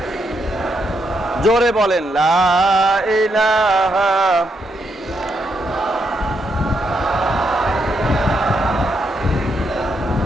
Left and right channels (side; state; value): both; normal; correlation 0.79